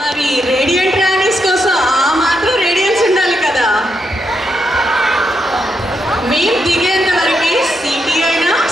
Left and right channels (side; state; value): both; normal; correlation 0.82